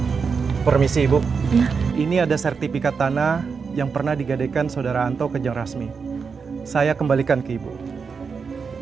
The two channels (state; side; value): quieter; left; 5.5 dB